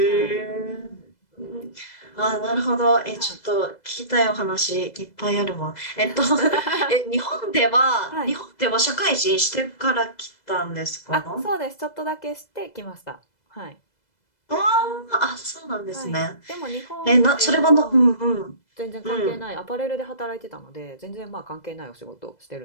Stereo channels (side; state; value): right; late; 2.0 ms